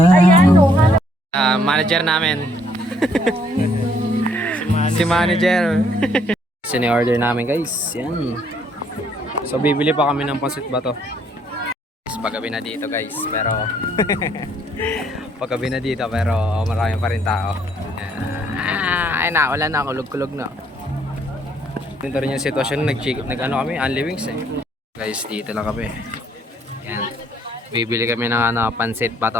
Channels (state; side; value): normal; both; correlation 0.66